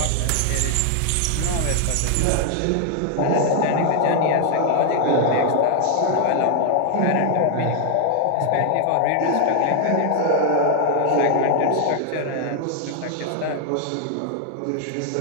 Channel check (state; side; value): different; both; correlation 0.00